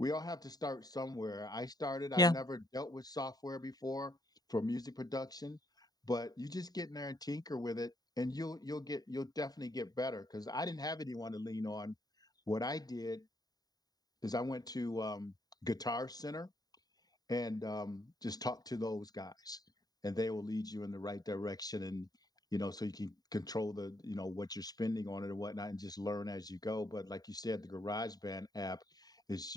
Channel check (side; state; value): right; late; 0.18 ms